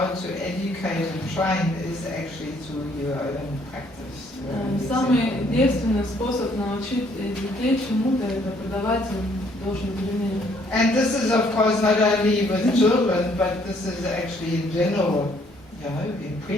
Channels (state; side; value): normal; both; correlation 0.65